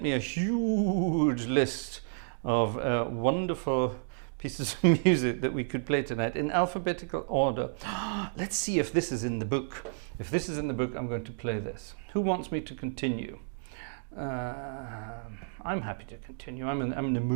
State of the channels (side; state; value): left; silent; digital silence